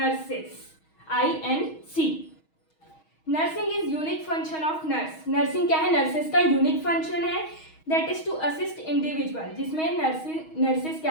INC। Nursing is unique function of nurse. Nursing क्या है? नर्सेस का यूनिक फंक्शन है, that is to assist individual, जिसमें नर्सेस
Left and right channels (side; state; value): right; late; 6.3 ms